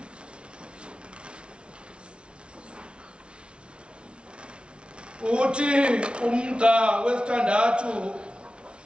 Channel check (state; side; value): late; left; 0.058 ms